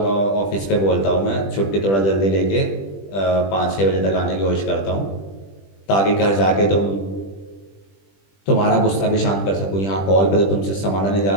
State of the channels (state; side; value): late; right; 20 ms